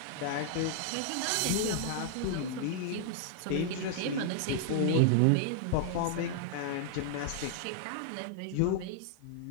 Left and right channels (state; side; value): different; both; correlation -0.01